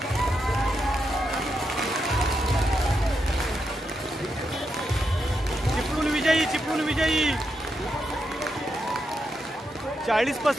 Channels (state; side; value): normal; both; correlation 0.84